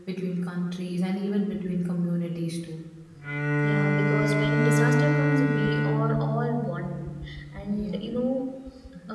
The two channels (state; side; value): identical; both; correlation 1.00